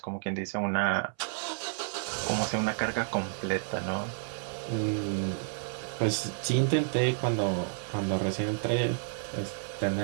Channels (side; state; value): left; silent; 57 dB below the other